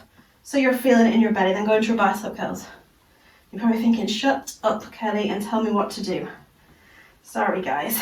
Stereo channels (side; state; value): both; identical; correlation 1.00